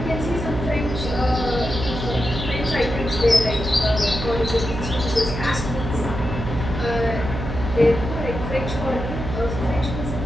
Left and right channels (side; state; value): right; noise; hum, 5 dB below the sound